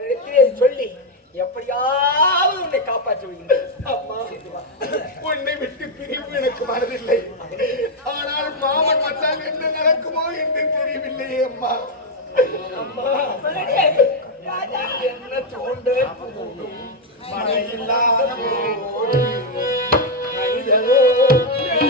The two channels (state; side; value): normal; both; correlation 0.02